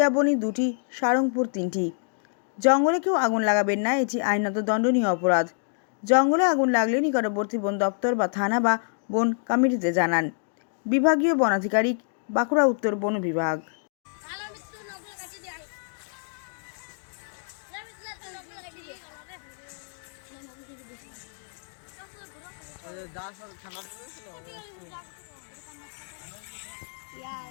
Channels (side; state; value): right; silent; digital silence